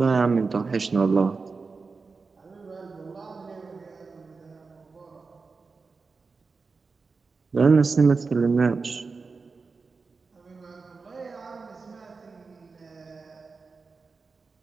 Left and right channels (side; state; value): left; quieter; 4.4 dB